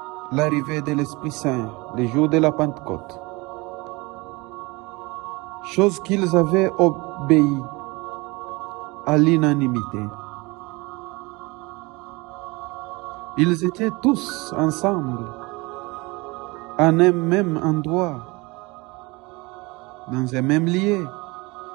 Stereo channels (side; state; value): left; quieter; 24.5 dB